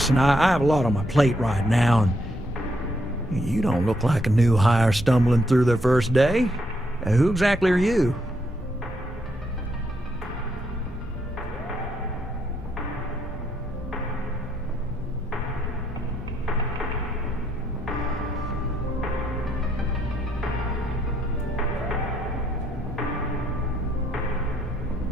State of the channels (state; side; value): normal; both; correlation 0.75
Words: I have a lot on my plate right now, and you don't look like a new hire stumbling through their first day. Who exactly are you?